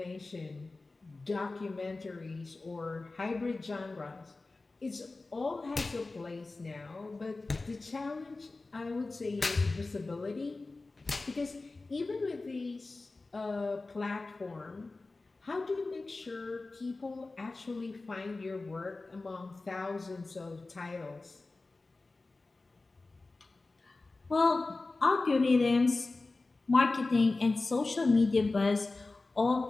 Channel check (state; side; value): quieter; right; 3.4 dB